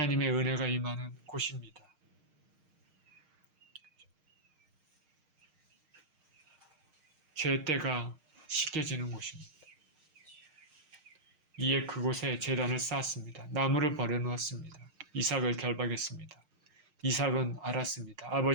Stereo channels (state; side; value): late; left; 6.5 ms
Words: 은혜가 임하는 곳입니다. 죄때가 씻겨지는 곳입니다. 이에 그곳에 제단을 쌓았습니다. 나무를 버려놓았습니다. 이삭을 결박했습니다. 이삭은 알았습니다.